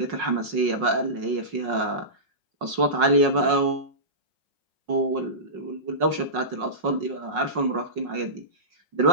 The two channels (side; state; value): left; late; 5.5 ms